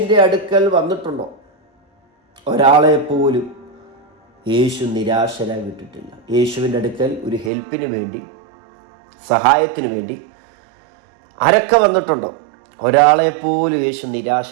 അടുക്കൽ വന്നിട്ടുണ്ടോ? ഒരാളെ പോലും യേശു നിരാശരായി വിട്ടിട്ടില്ല. യേശുവിൻ്റെ അടുക്കൽ ഒരു ഹെൽപ്പിന് വേണ്ടി, സഹായത്തിന് വേണ്ടി ആരൊക്കെ വന്നിട്ടുണ്ടോ? ഒരാളെ പോലും യേശു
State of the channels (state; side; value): drops out; left; at 7.5 s